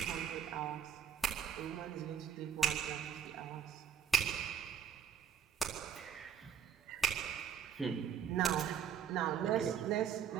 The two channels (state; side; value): quieter; left; 8.1 dB